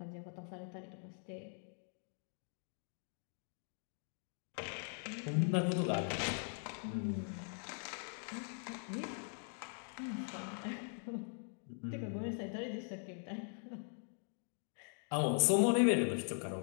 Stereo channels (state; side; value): silent; right; 50 dB below the other